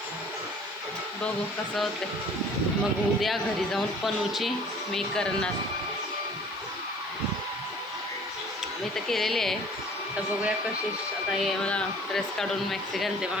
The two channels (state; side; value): noise; left; hiss, 28 dB below the sound